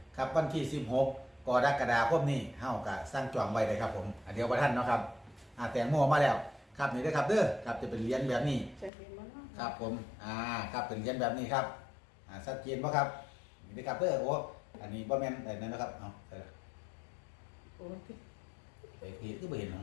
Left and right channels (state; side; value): drops out; right; at 8.9 s